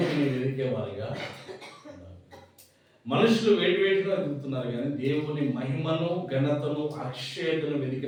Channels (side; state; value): both; identical; correlation 1.00